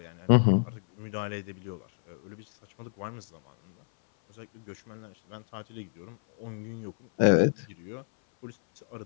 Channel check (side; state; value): right; silent; 58 dB below the other